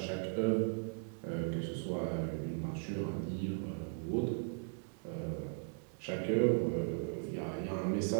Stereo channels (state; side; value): silent; left; 53 dB below the other